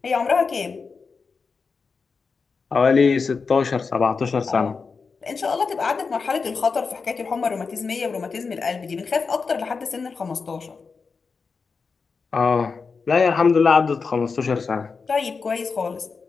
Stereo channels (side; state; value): right; quieter; 4.9 dB